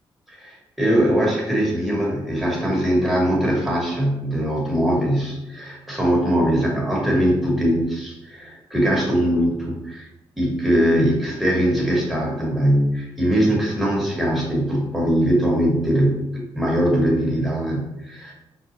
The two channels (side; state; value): both; normal; correlation 0.81